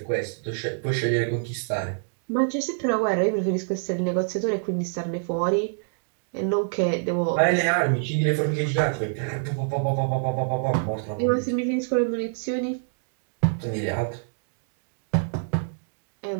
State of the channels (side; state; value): left; silent; digital silence